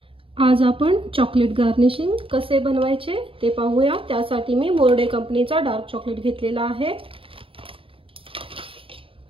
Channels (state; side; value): late; left; 0.26 ms